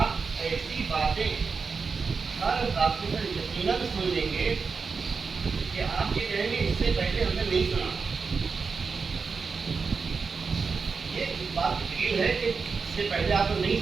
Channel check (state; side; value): quieter; left; 5.0 dB